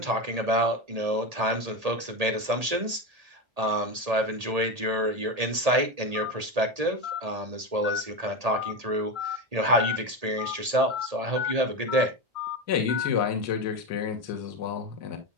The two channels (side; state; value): left; late; 1.8 ms